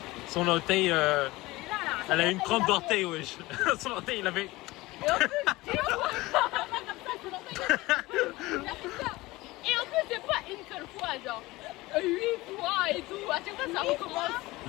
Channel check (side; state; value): right; quieter; 20.1 dB